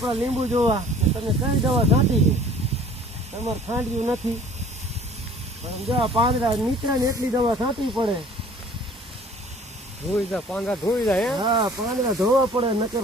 લીંબુ જોવા. તમે કઈ દવા છાંટી છે? તમારે ખાંડ્યું નથી. પણ જો પાંદડા નીકળે ને એટલી દવા છાંટવી પડે. ધોઈ જા પાંદડા ધોઈ જાય. હા, પાંદડા ધોવા પડે, નકર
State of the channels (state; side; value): normal; both; correlation 0.50